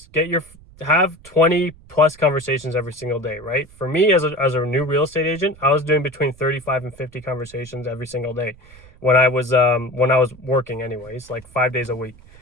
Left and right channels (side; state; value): right; noise; rumble, 24 dB below the sound